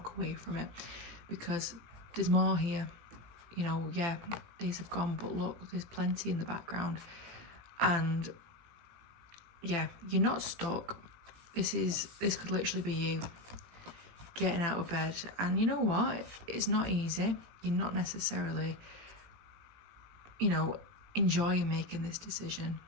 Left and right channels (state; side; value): late; left; 18 ms